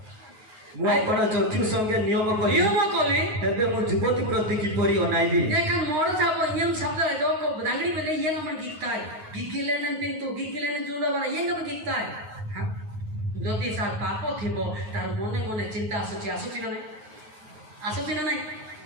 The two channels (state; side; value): late; left; 9.3 ms